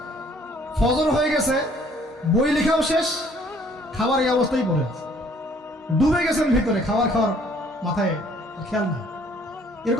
ফজর হয়ে গেছে, বই লেখাও শেষ, খাবার এই অবস্থায় পড়ে আছে, ডুবে গেছেন ভিতরে, খাওয়ার মাথায় খেয়াল নাই।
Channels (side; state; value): both; normal; correlation 0.60